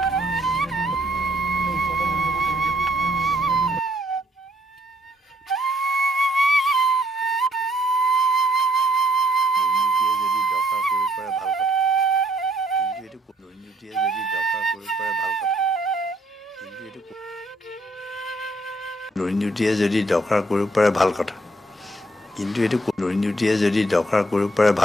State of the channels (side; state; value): both; normal; correlation 0.69